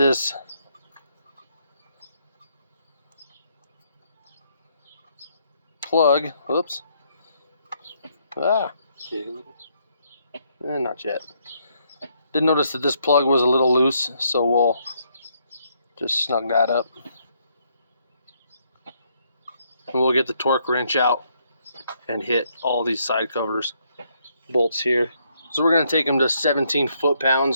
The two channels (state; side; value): inverted; both; correlation -0.73